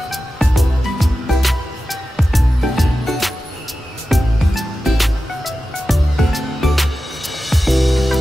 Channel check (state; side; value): normal; both; correlation 0.93